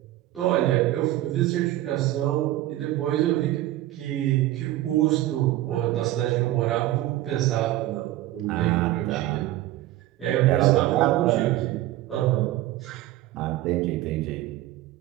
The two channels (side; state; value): left; quieter; 15.3 dB